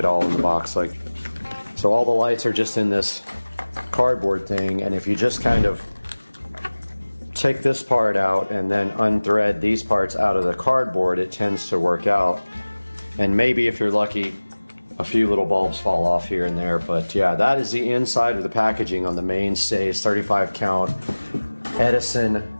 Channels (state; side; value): inverted; both; correlation -1.00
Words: all in the box. Like, so all the lights are just in this cardboard thing, and if you just kind of take this part out and then unthread these parts out of the cardboard, it tends to work out. And maybe if you're lucky, a few little bulbs fall off here and there. But yeah, that is the inside of the packaging on the mainstays 35 count Edison